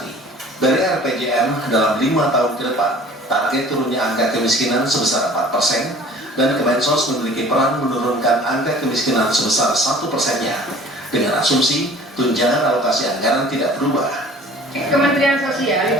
Dari RPJM dalam 5 tahun ke depan, target turunnya angka kemiskinan sebesar 4% dan Kemensos memiliki peran menurunkan angka kemiskinan sebesar 1%-nya dengan asumsi tunjangan alokasi anggaran tidak berubah. Kementerian Sosial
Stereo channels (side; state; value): both; normal; correlation 0.48